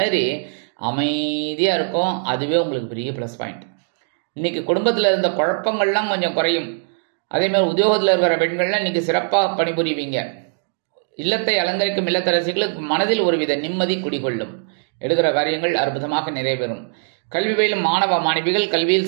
அமைதியாக இருக்கும். அதுவே உங்களுக்கு பெரிய ப்ளஸ் பாயிண்ட். இன்னைக்கு குடும்பத்தில் இருந்த குழப்பங்கள்லாம் கொஞ்சம் குறையும். அதேமாதிரி உத்தியோகத்தில் இருக்கிற பெண்கள்லாம் இன்னைக்கு சிறப்பாக பணிபுரிவீங்க. இல்லத்தை அலங்கரிக்கும் இல்லத்தரசிகளுக்கு மனதில் ஒருவித நிம்மதி குடிகொள்ளும். எடுக்கிற காரியங்கள் அற்புதமாக நிறைவேறும். கல்வி பயிலும் மாணவ மாணவிகள் கல்வியில்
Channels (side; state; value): left; silent; digital silence